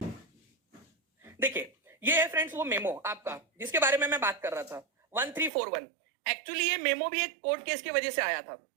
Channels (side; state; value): left; drops out; at 5.5 s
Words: देखिए ये है फ्रेंड्स वो मेमो आपका जिसके बारे में मैं बात कर रहा था 1341। एक्चुअली ये मेमो भी एक कोर्ट केस की वजह से आया था।